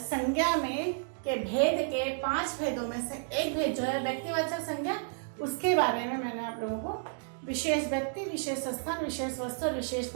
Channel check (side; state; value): left; silent; digital silence